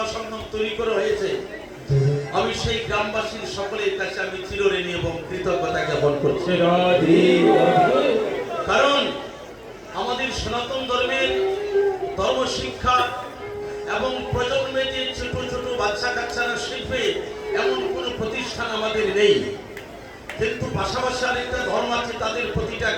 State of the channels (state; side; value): identical; both; correlation 1.00